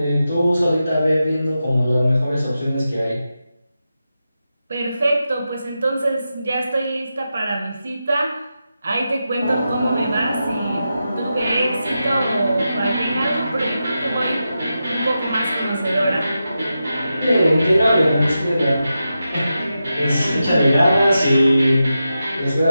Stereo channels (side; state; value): both; inverted; correlation -0.90